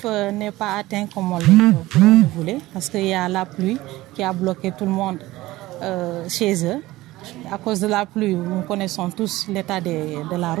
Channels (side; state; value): left; quieter; 17.9 dB